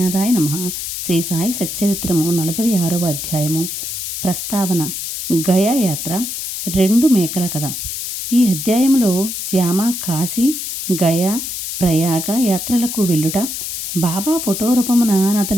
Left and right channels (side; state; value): left; noise; hiss, 5 dB below the sound